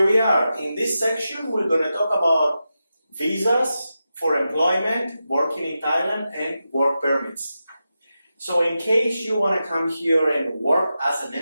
we are. In this section, we're going to talk about visas for employment, working in Thailand, and work permits. So in case you want to come here and work as an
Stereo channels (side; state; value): both; inverted; correlation -0.90